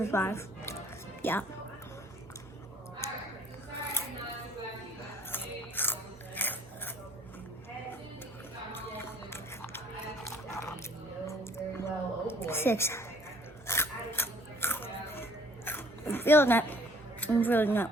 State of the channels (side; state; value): both; normal; correlation 0.57